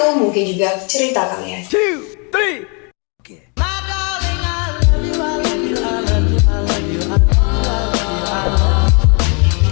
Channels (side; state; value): right; quieter; 34.7 dB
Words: mungkin juga cerita kalian. 2, 3.